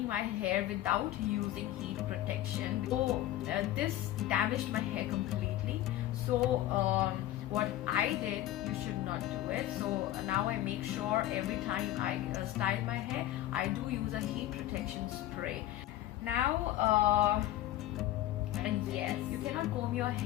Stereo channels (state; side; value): quieter; right; 14.2 dB